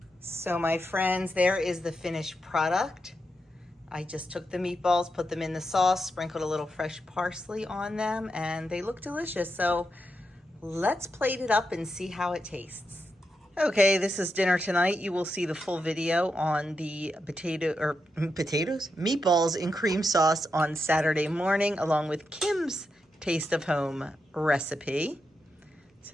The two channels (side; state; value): both; normal; correlation 0.85